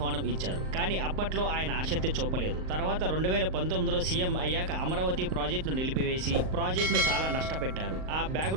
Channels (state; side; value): late; left; 38 ms